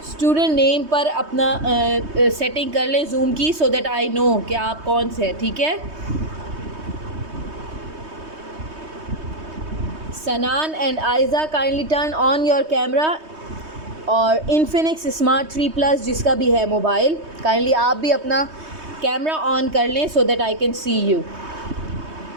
स्टूडेंट नेम पर अपना सेटिंग कर लें जूम की, सो दैट आई नो कि आप कौन से हैं। ठीक है। सनान and Aiza, kindly turn on your camera. और इनफिनिक्स स्मार्ट 3 प्लस जिसका भी है मोबाइल, काइंडली आप भी अपना कैमरा ऑन कर लें so that I can see you.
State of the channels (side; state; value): left; late; 3.2 ms